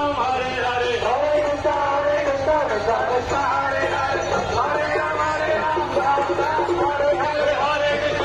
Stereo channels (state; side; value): identical; both; correlation 1.00